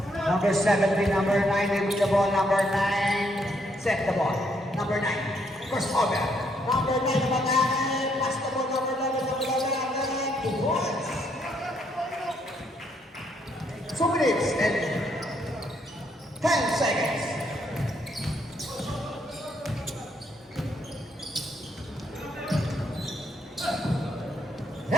number 17, number 9, with the ball, number 9, set the ball. Number 9, first over. Number 9, pass the ball, number 11, number 11, 2 points. 2 minutes and 10 seconds.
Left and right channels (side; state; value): both; normal; correlation 0.73